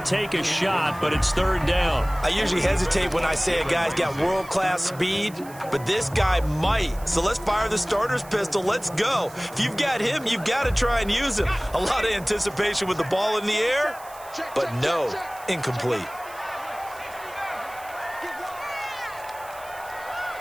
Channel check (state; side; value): noise; right; hiss, 20 dB below the sound